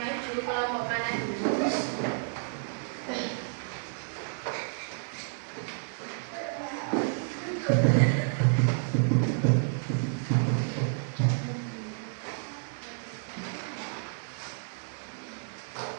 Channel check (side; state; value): left; silent; digital silence